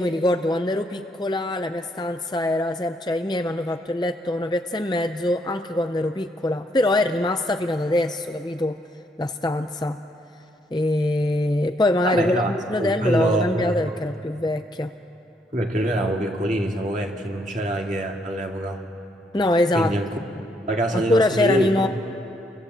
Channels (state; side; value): normal; both; correlation 0.72